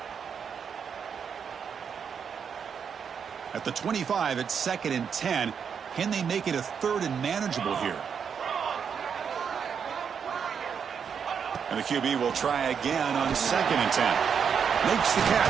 At the 25, it's 2nd and 10. Can they make it a 3rd and manageable here? And the QB will try again on 2nd and 10. Makes the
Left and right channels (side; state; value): left; quieter; 7.0 dB